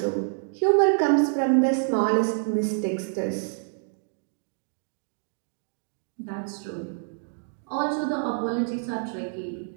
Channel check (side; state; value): left; silent; digital silence